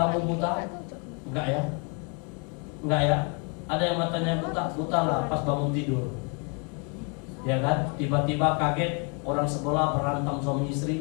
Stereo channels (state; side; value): quieter; right; 36.0 dB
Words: buta? Enggak ya? Enggak ya? Ada yang matanya buta lah pas bangun tidur. Ya kan? Tiba-tiba kaget, orang sebelah berantem suami